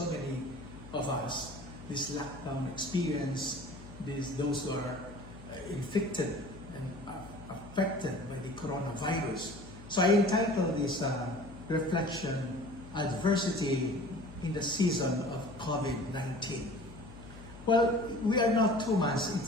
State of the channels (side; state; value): left; noise; hum, 16 dB below the sound